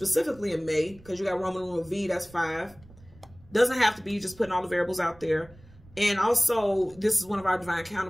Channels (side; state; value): right; noise; rumble, 24 dB below the sound